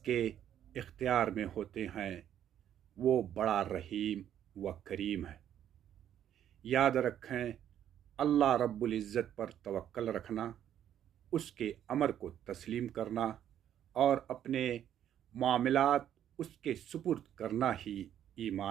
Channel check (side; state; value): left; quieter; 10.4 dB